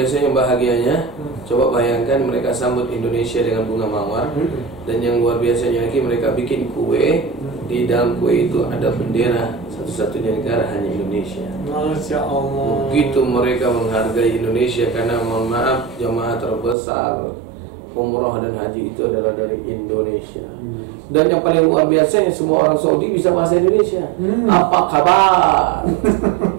yang bahagianya, coba bayangkan mereka sambut Indonesia dengan bunga mawar. Dan yang luar biasanya lagi, mereka bikin kue. Di dalam kue itu ada bendera satu-satunya negara, hanya Indonesia. Masya Allah. Begitu mereka menghargai Indonesia, karena mohon maaf, jamaah terbesar umroh dan haji itu adalah dari Indonesia. Dan yang paling luar biasa, semua orang Saudi bisa bahasa Indonesia. Apa kabar?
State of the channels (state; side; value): drops out; left; at 16.8 s